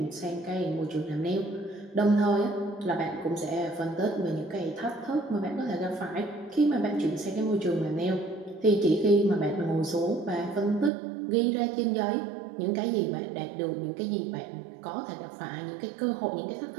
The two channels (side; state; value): left; drops out; at 10.9 s